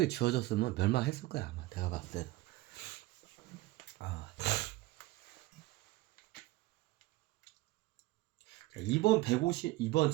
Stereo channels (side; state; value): left; quieter; 18.6 dB